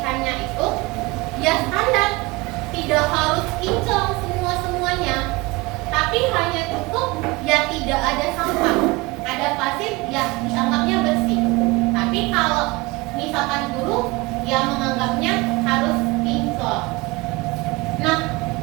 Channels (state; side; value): quieter; left; 23.4 dB